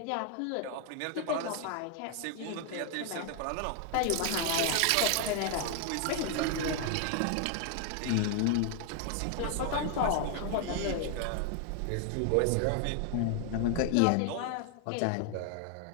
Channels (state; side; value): different; both; correlation 0.00